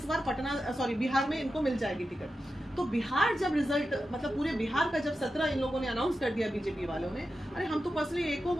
बार बिहार में इनको मिल जाएगी टिकट। तो बिहार जब रिजल्ट, मतलब पूरे बिहार का जब 17 इन लोगों ने अनाउंस कर दिया बीजेपी वालों ने, अरे हम तो पर्सनली एको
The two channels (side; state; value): both; normal; correlation 0.90